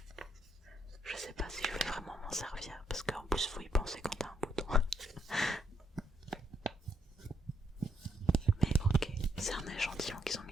m'en servir, parce qu'en plus faut y penser quand t'as un bouton. Mais ok, c'est un échantillon qu'ils ont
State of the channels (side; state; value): both; normal; correlation 0.75